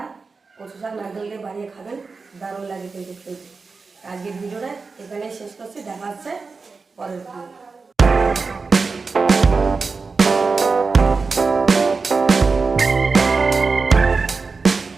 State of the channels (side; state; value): left; quieter; 4.4 dB